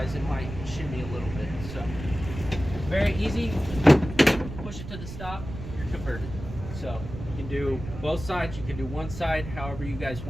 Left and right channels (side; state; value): right; noise; rumble, 10 dB below the sound